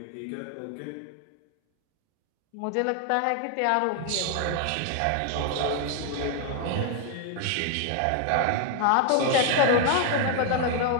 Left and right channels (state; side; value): different; both; correlation 0.00